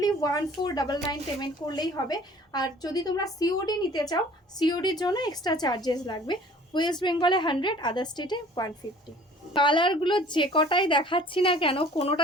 1499 পেমেন্ট করলেই হবে। আর যদি তোমরা সিওডি নিতে চাও, সিওডির জন্য এক্সট্রা চার্জেস লাগবে। ওয়েস্ট বেঙ্গলে 100, আদার স্টেটে 150। কালারগুলো যে কটাই দেখাচ্ছি না কেন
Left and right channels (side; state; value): both; normal; correlation 0.50